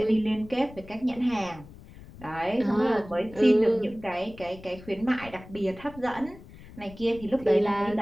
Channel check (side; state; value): left; noise; rumble, 18 dB below the sound